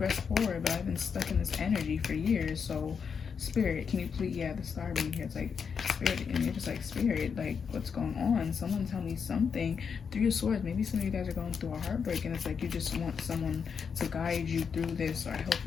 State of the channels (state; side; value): quieter; right; 6.3 dB